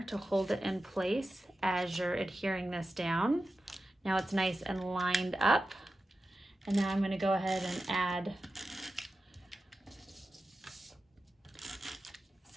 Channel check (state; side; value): normal; both; correlation 0.92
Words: to hold it in place as you're adhering this down. Now it's nice and lined up. And now I'm gonna go ahead and add